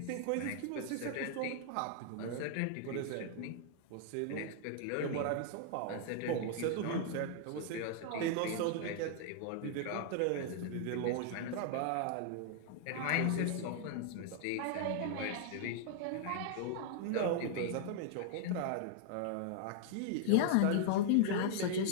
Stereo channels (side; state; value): both; different; correlation -0.01